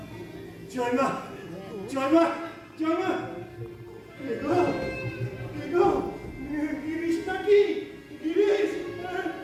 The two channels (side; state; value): both; identical; correlation 1.00